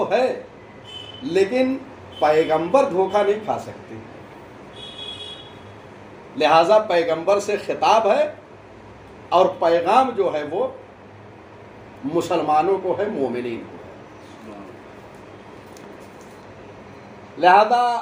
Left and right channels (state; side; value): identical; both; correlation 1.00